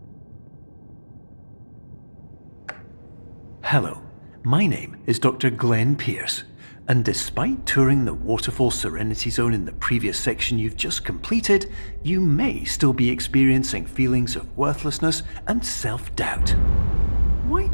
Hello, my name is Dr. Glenn Pierce, and despite touring the Waterfall Serenity Zone in the previous section you've just completed, you may still be experiencing feelings of worthlessness and self-doubt. Why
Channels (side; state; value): both; inverted; correlation -1.00